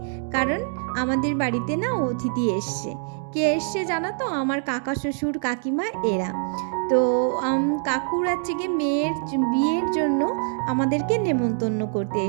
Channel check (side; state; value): left; silent; 62 dB below the other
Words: কারণ আমাদের বাড়িতে না অতিথি এসছে। কে এসছে জানো তো? আমার কাকা শ্বশুর কাকিমা এরা। তো কাকুর হচ্ছে গিয়ে মেয়ের বিয়ের জন্য আমাদেরকে নেমন্তন্ন করতে